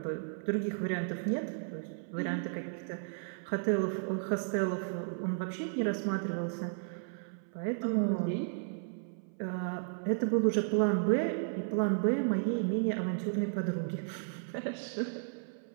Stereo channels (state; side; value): silent; left; 55 dB below the other